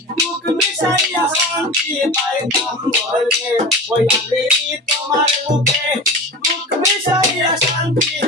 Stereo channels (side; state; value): both; normal; correlation 0.31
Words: বুক মিশাইয়া শান্তি পাইতাম বলে ওই আমি তোমার বুকে বুক মিশাইয়া শান্তি